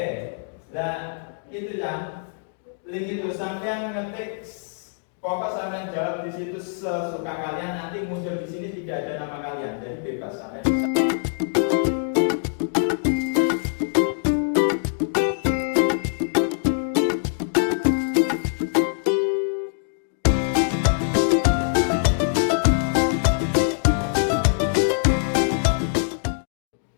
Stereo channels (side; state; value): right; silent; digital silence